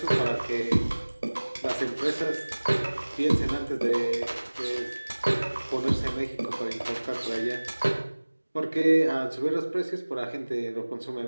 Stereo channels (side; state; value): both; inverted; correlation -1.00